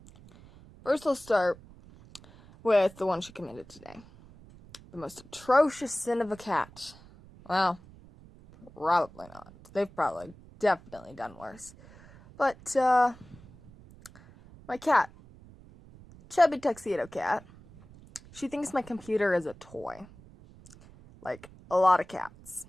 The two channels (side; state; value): right; noise; rumble, 22 dB below the sound